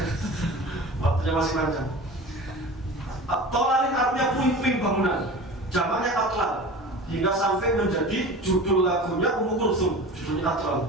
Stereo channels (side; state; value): both; normal; correlation 0.36